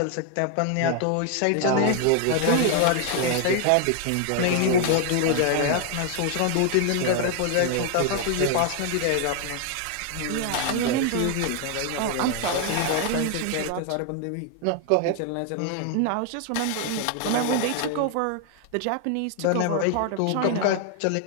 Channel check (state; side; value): different; both; correlation 0.00